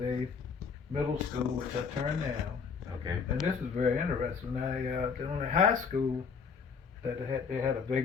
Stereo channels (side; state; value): right; quieter; 5.8 dB